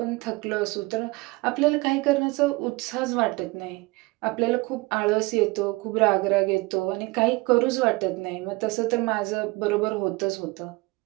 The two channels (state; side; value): quieter; left; 23.4 dB